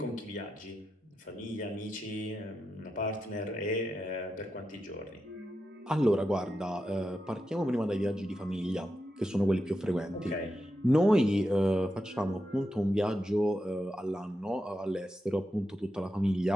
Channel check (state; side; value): normal; both; correlation 0.88